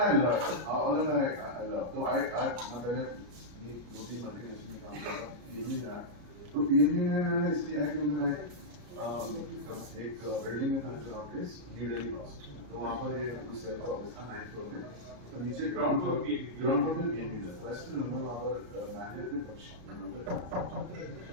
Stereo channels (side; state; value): left; late; 33 ms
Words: लव तो आई मैं पहले ये 2-3 मल्टीनेशनल में काम कर रहा था, तो पीएनबी में मैंने इसलिए आया क्योंकि मैं एक बिल्डिंग में था जो ऑफिस न्यू दिल्ली हाउस, तो वहाँ पर ये सेल्फ ऑफिस था 9th फ्लोर में, तो नीचे ग्राउंड फ्लोर में पीएनबी था, तो ऐसे नंबर वहाँ पर मैनेजर थे पक्ष,